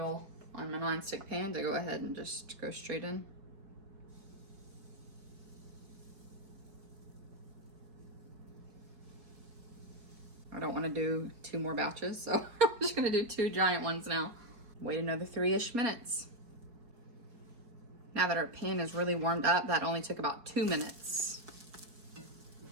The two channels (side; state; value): left; late; 4.7 ms